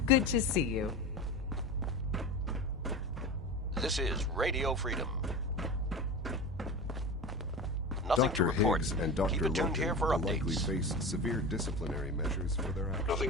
Good to see you. This is Radio Freedom. Nothing Dr. to report. Higgs and Keep Dr. it tuned Logan here for will updates. likely face severe disciplinary measures for their actions.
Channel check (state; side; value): normal; both; correlation 0.28